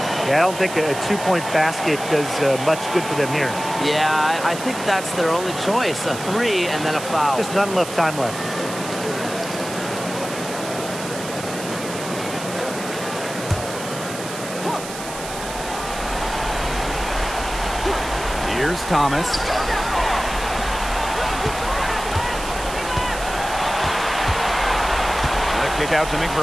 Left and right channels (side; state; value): right; noise; hiss, 10 dB below the sound